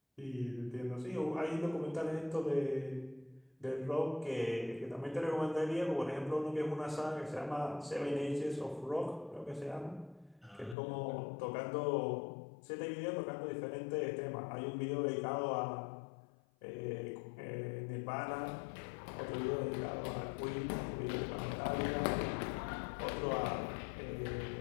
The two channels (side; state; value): right; drops out; at 10.8 s